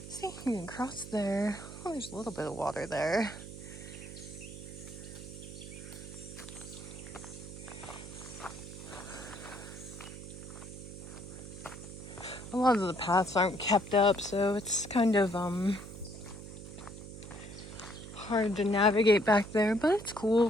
See, you can cross there. Oh, there's a little bit of water there. A lot of the paths aren't kept up, so it's kind of hard to navigate back there, but it's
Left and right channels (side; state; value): right; noise; hum, 12 dB below the sound